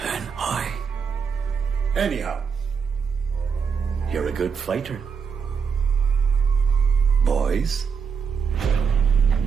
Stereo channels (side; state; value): left; quieter; 6.2 dB